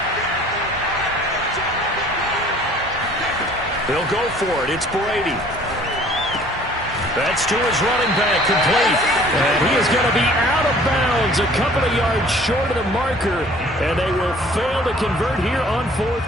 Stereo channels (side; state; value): both; normal; correlation 0.53